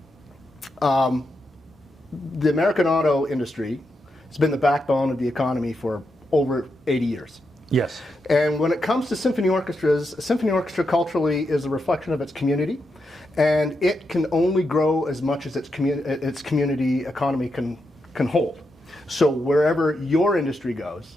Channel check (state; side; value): normal; both; correlation 0.85